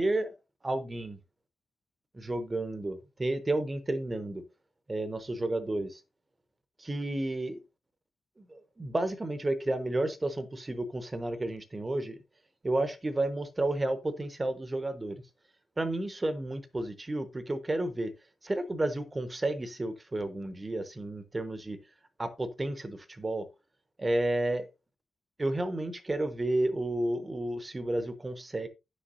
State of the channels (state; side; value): normal; both; correlation 0.95